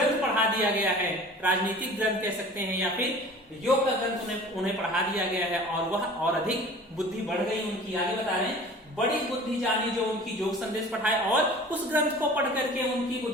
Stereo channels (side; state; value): both; normal; correlation 0.43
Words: पढ़ा दिया गया है, राजनीतिक ग्रंथ कह सकते हैं या फिर योग का ग्रंथ उन्हें पढ़ा दिया गया है, और वह और अधिक बुद्धि बढ़ गई उनकी। आगे बता रहे हैं, बड़ी बुद्धि जानी जो उनकी योग संदेश पढ़ाए, और उस ग्रंथ को पढ़ करके उनकी